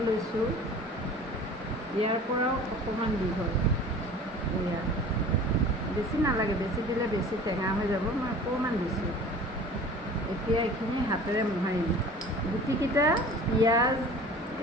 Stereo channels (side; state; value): both; normal; correlation 0.43